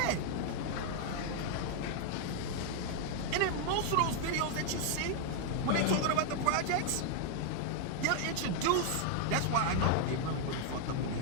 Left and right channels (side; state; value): both; different; correlation 0.00